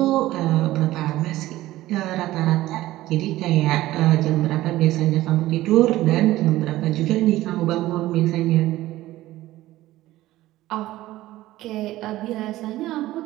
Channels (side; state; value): left; quieter; 16.1 dB